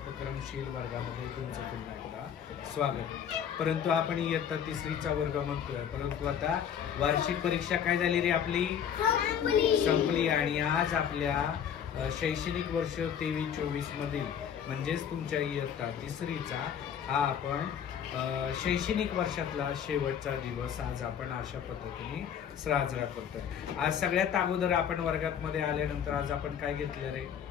वर्गामध्ये तुमचं पुन्हा एकदा स्वागत. परंतु आपण इयत्ता तिसरीचा वर्ग म्हणतोय, परंतु आता वार्षिक परीक्षा काय झाली रे आपली संपली. आणि आज आपल्या शैक्षणिक वर्ष 23-24 मधील म्हणजेच तुमच्या इयत्ता तिसरीचा हा आपण शैक्षणिक वर्षातला शेवटचा दिवस आज आपण अशा पद्धतीने साजरा करतोय. आज सगळ्यात अगोदर आपण वर्गात मध्ये आल्यानंतर आज आपण काय घेतलं रे,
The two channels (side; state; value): right; quieter; 8.5 dB